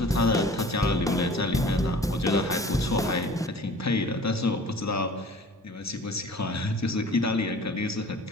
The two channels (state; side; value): normal; both; correlation 0.46